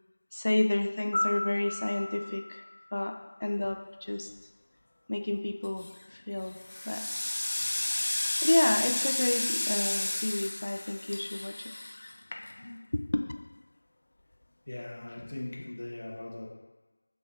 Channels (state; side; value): inverted; both; correlation -1.00